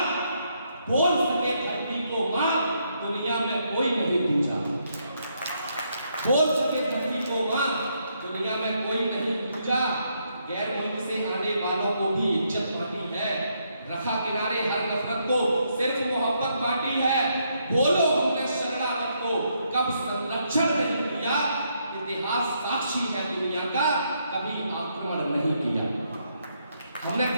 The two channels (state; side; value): inverted; both; correlation -0.76